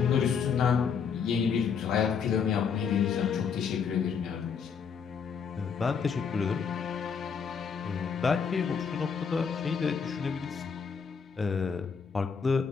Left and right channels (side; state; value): right; quieter; 6.4 dB